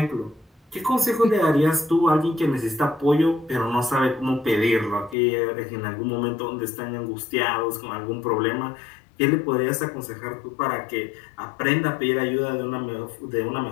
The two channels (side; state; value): right; drops out; at 5.2 s